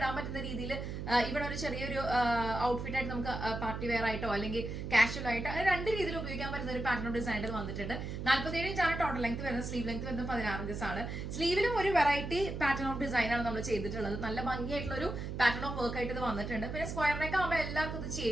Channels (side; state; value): right; noise; hum, 5 dB below the sound